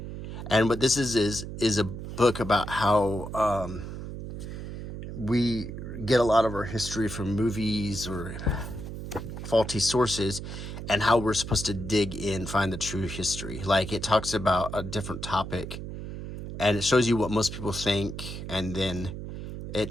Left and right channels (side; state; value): right; noise; hum, 8 dB below the sound